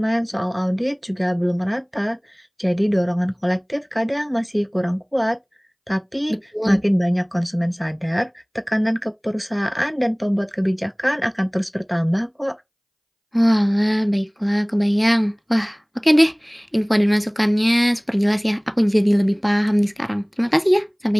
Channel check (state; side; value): identical; both; correlation 1.00